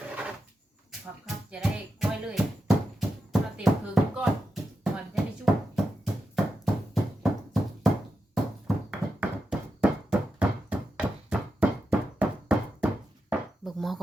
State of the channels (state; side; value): normal; both; correlation 0.88